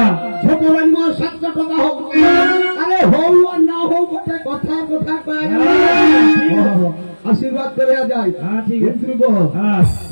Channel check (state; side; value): inverted; both; correlation -1.00